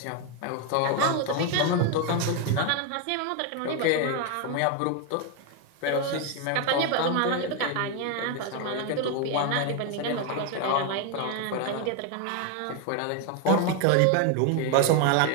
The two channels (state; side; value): different; both; correlation 0.01